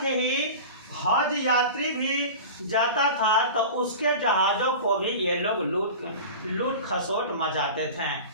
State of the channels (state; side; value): inverted; both; correlation -0.33